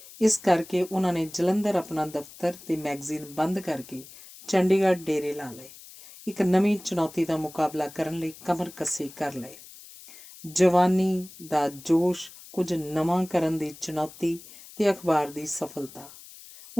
ਇਸ ਕਰਕੇ ਉਹਨਾਂ ਨੇ ਜਲੰਧਰ ਆਪਣਾ ਦਫ਼ਤਰ ਤੇ ਮੈਗਜ਼ੀਨ ਬੰਦ ਕਰਕੇ ਚੰਡੀਗੜ੍ਹ ਡੇਰੇ ਲਾ ਲਏ। ਇੱਕ ਨਵੀਂ ਚੁਣੌਤੀ ਦਾ ਮੁਕਾਬਲਾ ਕਰਨ ਲਈ ਕਮਰ ਕੱਸੇ ਕਰ ਲਏ। ਜਵਾਨੀ ਦਾ ਜੋਸ਼, ਕੁਝ ਨਵਾਂ ਕਰਨ ਦੀ ਚੁਣੌਤੀ ਤੇ ਅਖਬਾਰ ਦੀ ਸਫਲਤਾ।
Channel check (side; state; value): left; noise; hiss, 19 dB below the sound